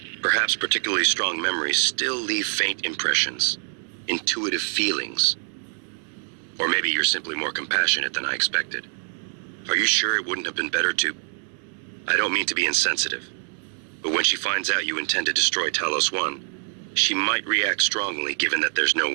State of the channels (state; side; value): silent; left; 62 dB below the other